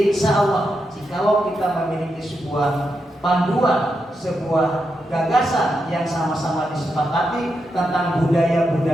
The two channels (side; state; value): both; normal; correlation 0.85